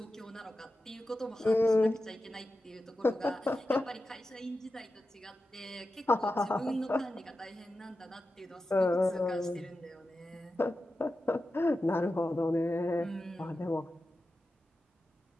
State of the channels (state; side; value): normal; both; correlation 0.92